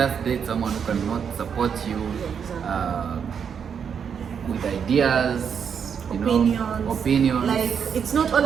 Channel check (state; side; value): quieter; left; 7.2 dB